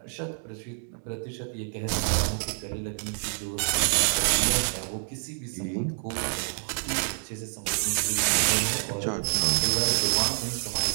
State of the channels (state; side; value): silent; left; 60 dB below the other